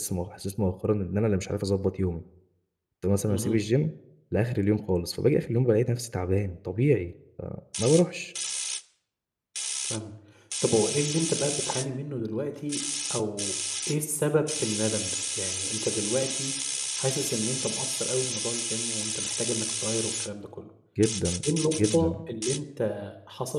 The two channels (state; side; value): identical; both; correlation 1.00